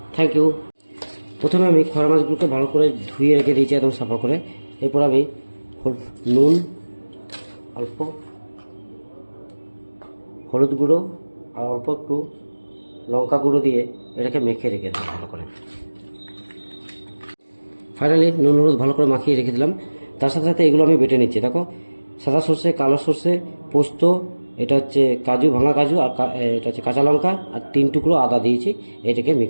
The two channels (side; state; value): both; inverted; correlation -1.00